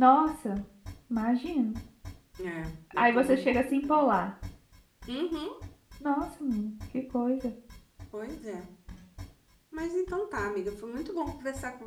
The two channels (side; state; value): both; identical; correlation 1.00